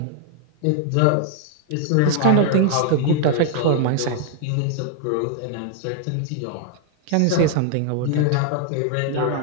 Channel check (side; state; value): both; different; correlation 0.00